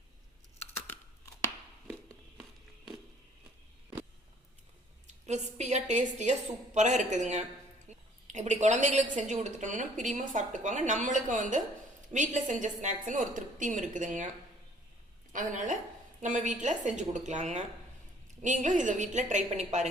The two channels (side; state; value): both; normal; correlation 0.58